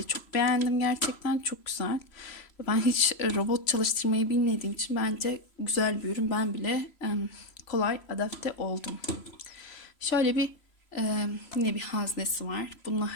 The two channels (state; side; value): late; right; 3.0 ms